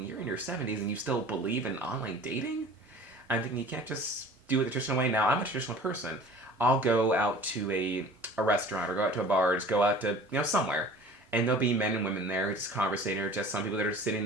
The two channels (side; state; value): both; normal; correlation 0.45